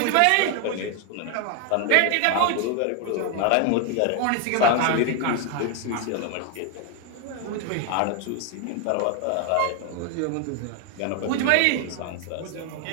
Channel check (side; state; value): both; different; correlation 0.01